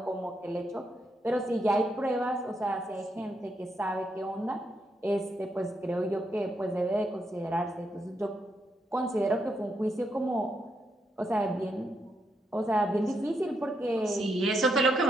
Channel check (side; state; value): both; normal; correlation 0.80